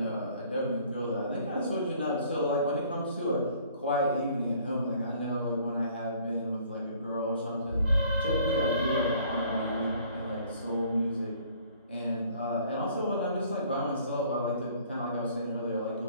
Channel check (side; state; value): both; inverted; correlation -0.57